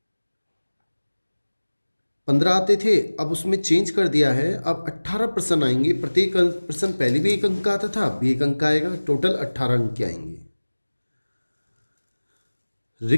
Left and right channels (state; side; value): inverted; both; correlation -1.00